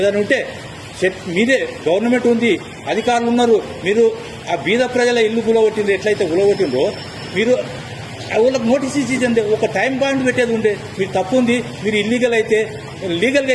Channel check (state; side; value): identical; both; correlation 1.00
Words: ఉంటే మీదే గవర్నమెంట్ ఉంది, అధికారులు ఉన్నారు, మీరు ఆ బీద ప్రజల ఇల్లు గులగొట్టింది ఎట్లయితే గులగొట్టిందో మీరు వాళ్ళకి నోటీస్ ఇచ్చింది. ఒక టైం పాయింట్ పెట్టేది ఉండే. మీరు తప్పు ఉంది, మీరు లీగల్గా